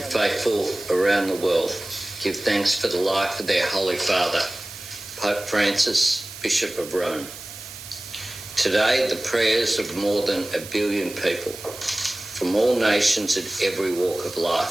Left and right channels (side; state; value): right; noise; hiss, 13 dB below the sound